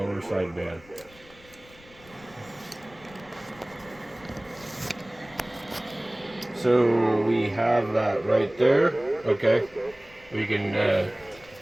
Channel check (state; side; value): noise; left; rumble, 24 dB below the sound